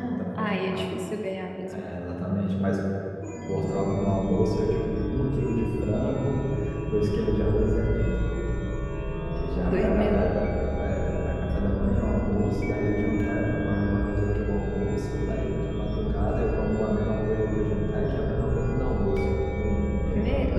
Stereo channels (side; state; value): both; identical; correlation 1.00